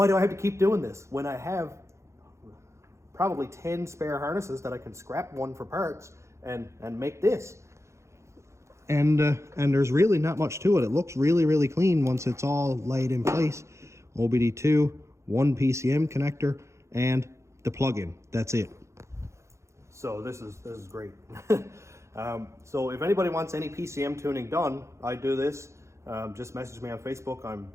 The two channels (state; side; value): late; left; 0.14 ms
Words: do I have to keep doing this when I have probably 10 spare harnesses that I can scrap one for parts and make this. And there's really not much to it. It looks really, really clean once it's all laid in place. OBD2, one PCM connector, and the plug-in. That's it. So this is great. So if anybody wants any PCM tuning done, I do this. Just message me on Facebook. I'm